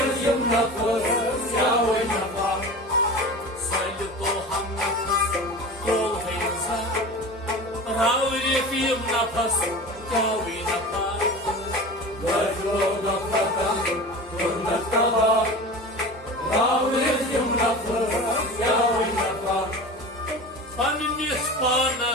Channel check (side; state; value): both; normal; correlation 0.33